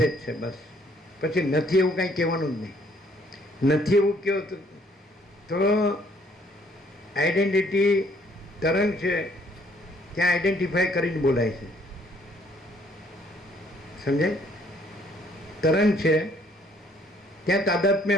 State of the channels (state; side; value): normal; both; correlation 0.64